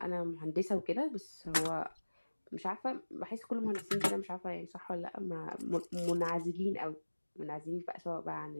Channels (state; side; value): inverted; both; correlation -1.00